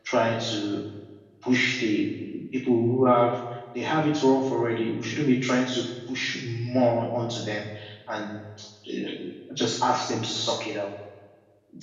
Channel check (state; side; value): identical; both; correlation 1.00